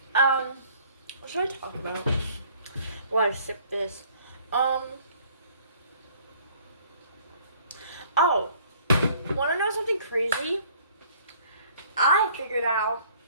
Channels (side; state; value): both; inverted; correlation -0.57